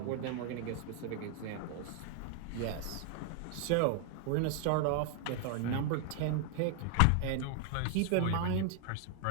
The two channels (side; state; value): both; different; correlation 0.00